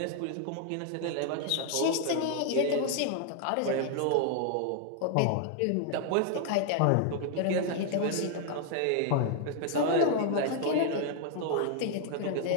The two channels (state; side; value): different; both; correlation 0.00